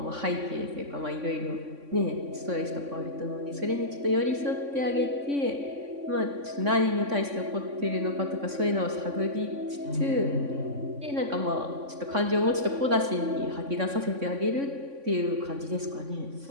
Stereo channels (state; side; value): late; left; 3.6 ms